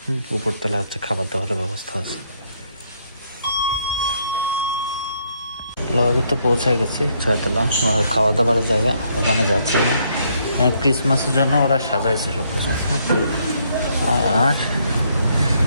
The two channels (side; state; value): both; inverted; correlation -0.71